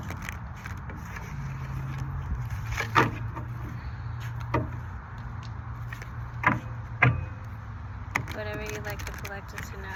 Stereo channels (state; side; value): identical; both; correlation 1.00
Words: Whatever you'd like the collective to